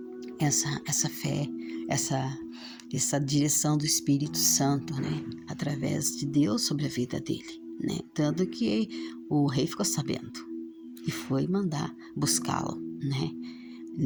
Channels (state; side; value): identical; both; correlation 1.00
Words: essa fé, essa direção do Espírito Santo, né? Através de Deus sobre a vida dele, né? Tanto que o rei ficou sabendo e foi mandar buscá-lo, né?